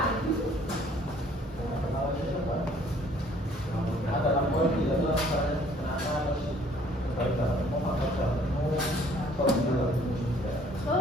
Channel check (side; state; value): both; normal; correlation 0.59